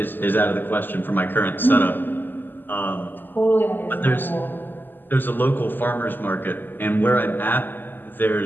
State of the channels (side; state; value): right; late; 0.091 ms